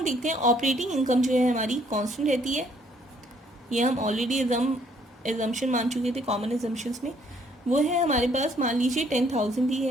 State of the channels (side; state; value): both; normal; correlation 0.65